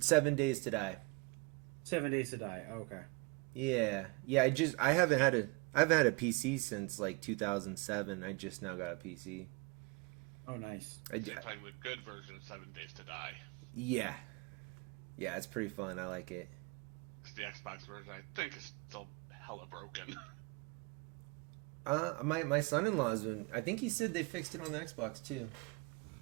Days to Die. 7 Days to Die. Okay. Yeah. I haven't had a PC since like 2007. I just now got a PC. Oh, nice. You're playing the good version of 7 Days to Die. Yeah. Yeah, it's pretty fun. I like it. The Xbox version, I think, is still hella broken. My son-in-law's been. I think he said they fixed it on the Xbox too.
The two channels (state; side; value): quieter; left; 28.6 dB